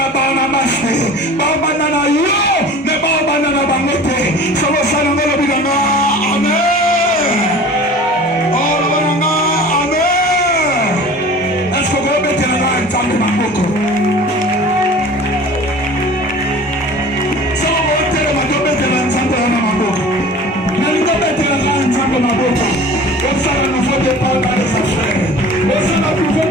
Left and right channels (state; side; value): normal; both; correlation 0.42